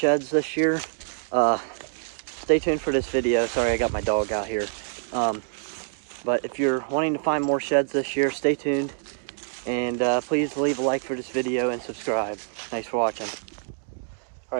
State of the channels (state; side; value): silent; left; digital silence